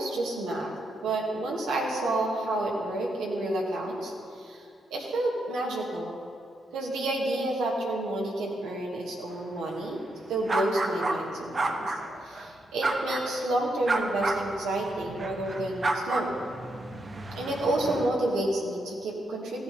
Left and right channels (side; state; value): both; normal; correlation 0.80